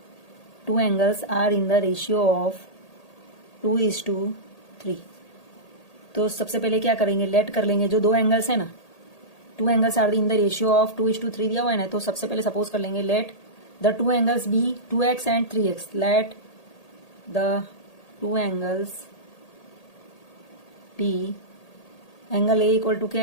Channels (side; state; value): right; late; 1.8 ms